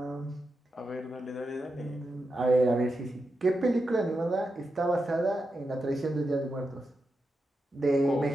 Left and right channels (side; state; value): both; normal; correlation 0.88